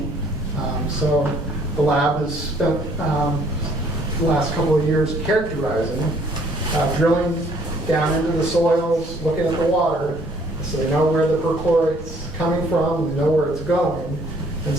So the lab has spent the last couple of years characterizing, drilling down into the soils, looking at the water, so they know where the perchlorate's coming from, they know where it's going. And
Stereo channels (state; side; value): normal; both; correlation 0.61